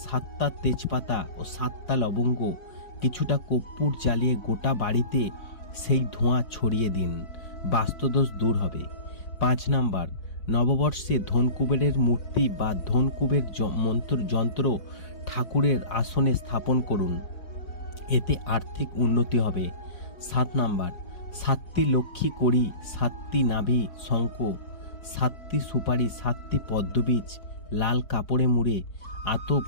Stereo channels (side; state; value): right; late; 4.8 ms